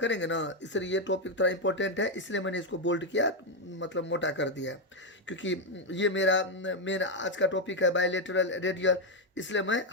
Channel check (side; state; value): both; normal; correlation 0.04